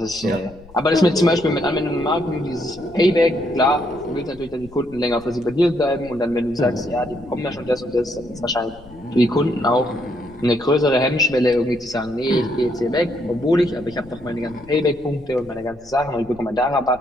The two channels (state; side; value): noise; left; rumble, 22 dB below the sound